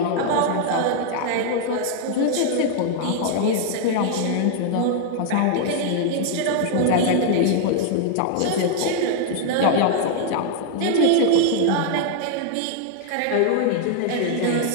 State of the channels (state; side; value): different; both; correlation 0.00